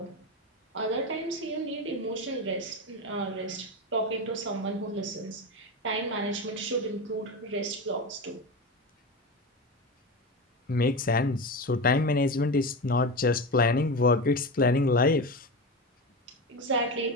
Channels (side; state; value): both; normal; correlation 0.21